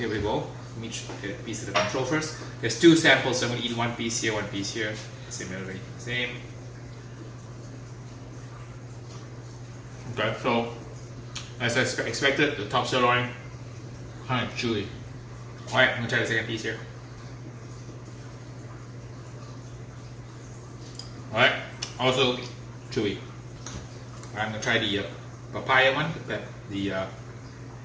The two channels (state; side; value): identical; both; correlation 1.00